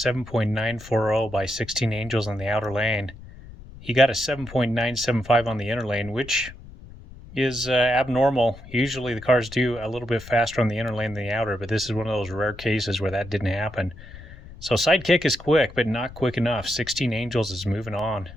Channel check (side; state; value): left; noise; rumble, 17 dB below the sound